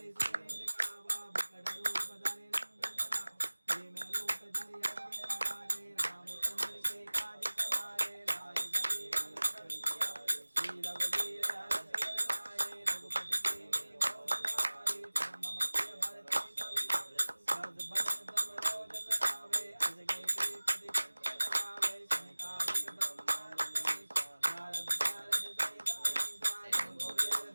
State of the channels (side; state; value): both; inverted; correlation -1.00